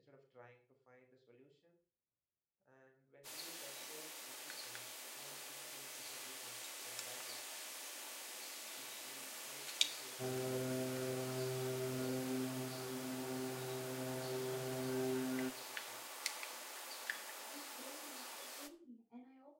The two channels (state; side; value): identical; both; correlation 1.00